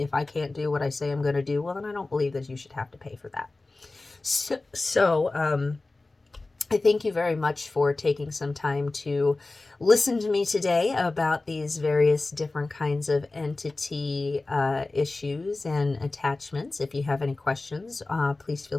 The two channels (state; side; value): quieter; right; 3.3 dB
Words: I can't do what I say I'm going to do, well, then I don't believe that you should have to pay for that. So I thank you very much for taking some time to listen to me today about these various different kinds of entity issues and attachments. If you have any questions, please feel